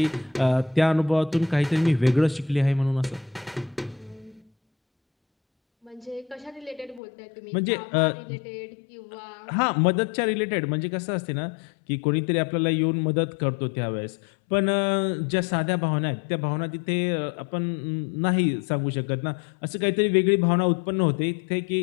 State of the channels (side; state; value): right; drops out; at 7.0 s